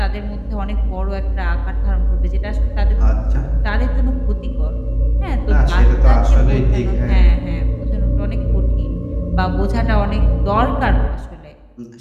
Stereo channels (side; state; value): both; identical; correlation 1.00